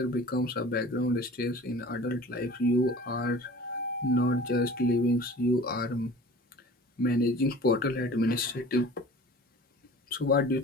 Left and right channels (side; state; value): both; normal; correlation 0.43